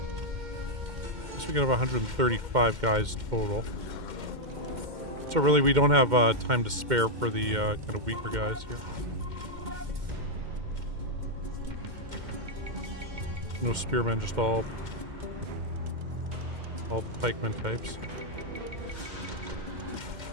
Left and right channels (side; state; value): left; late; 2.1 ms